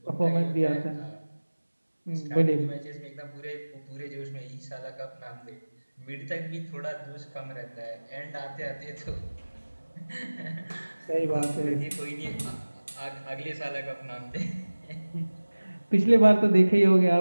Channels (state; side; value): inverted; both; correlation -1.00